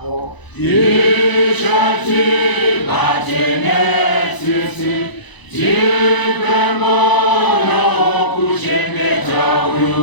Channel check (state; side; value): late; right; 1.0 ms